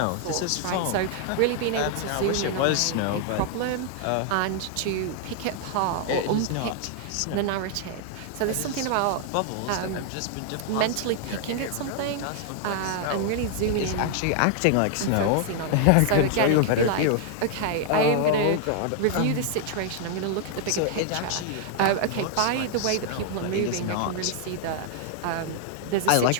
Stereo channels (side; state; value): both; different; correlation 0.00